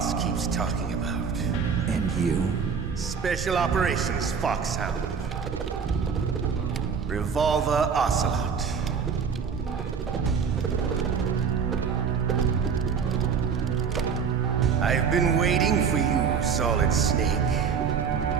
keeps talking about. And you? Special Operations Foxhound. Revolver Ocelot. I've been waiting for you, Solid Snake.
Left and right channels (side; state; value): left; quieter; 6.3 dB